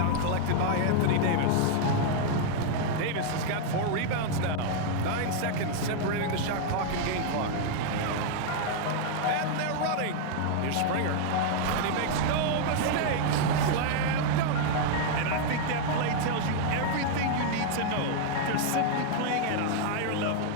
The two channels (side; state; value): both; different; correlation 0.00